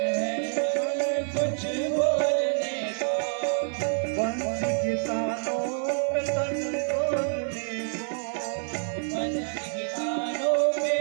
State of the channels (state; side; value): silent; left; 60 dB below the other